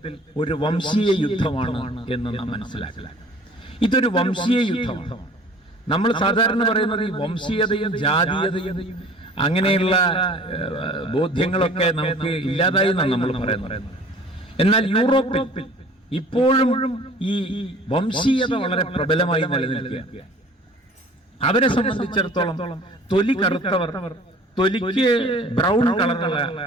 ഒരു വംശീയ യുദ്ധമാണ് എന്ന് നാം മനസ്സിലാക്കുക. ഇതൊരു വംശീയ യുദ്ധമാണ്. നമ്മൾ സാധാരണ പറയുന്നത് ഈ വംശീയതയും ജാതീയതയും അങ്ങനെയുള്ള ബോധ്യങ്ങളൊക്കെ നമുക്ക് ഇല്ലാതായി എന്നാണ് നമ്മൾ പറയുന്നത്. എന്നാൽ യൂറോപ്പിൽ ഇപ്പോഴും ഈ വംശീയത വളരെ പ്രബലമായി നിലനിൽക്കുക. അവരെ സംബന്ധിച്ചിടത്തോളം തൊലി കറുത്തവർ, തൊലിക്ക് ബ്രൗൺ കളറുള്ള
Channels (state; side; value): normal; both; correlation 0.48